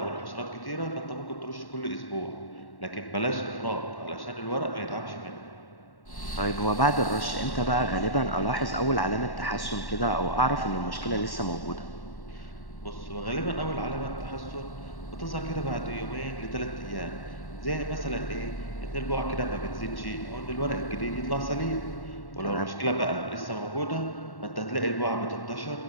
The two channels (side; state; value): right; late; 1.1 ms